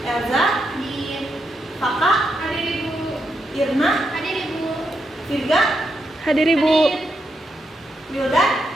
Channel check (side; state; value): both; normal; correlation 0.82